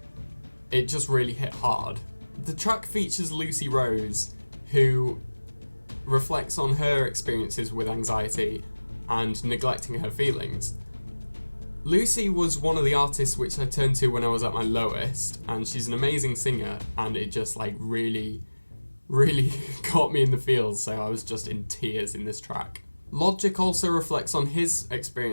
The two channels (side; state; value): both; inverted; correlation -1.00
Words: it just really hit hard. The track features Lucy Rose, who reflects on her experiences with anxiety and neglecting her feelings. Lucy was one of the artists which I turned to when I was at my lowest, and she's an amazing singer, and it just really got me in the feels, so I was just in tears in this track. Logic also reflects on his